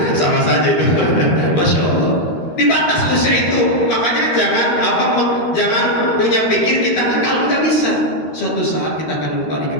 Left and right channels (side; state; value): right; late; 13 ms